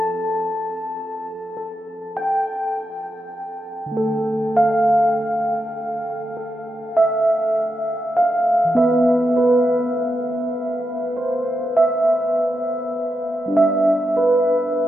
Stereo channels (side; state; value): both; normal; correlation 0.86